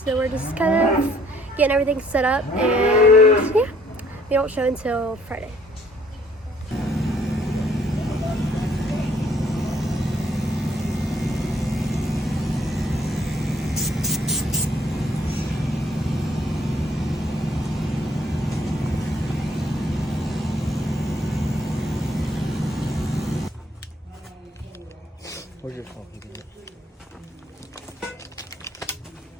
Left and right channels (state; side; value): normal; both; correlation 0.62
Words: we're just kind of getting everything set up, and yeah, we don't show until Friday. Where's your coffee?